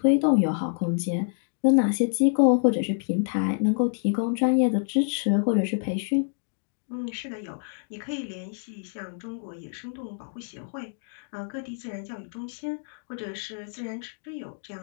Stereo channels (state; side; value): silent; right; digital silence